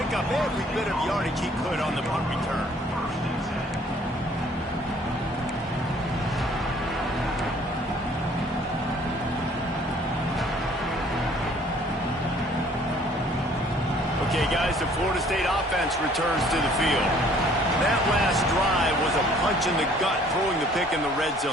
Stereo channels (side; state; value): both; normal; correlation 0.57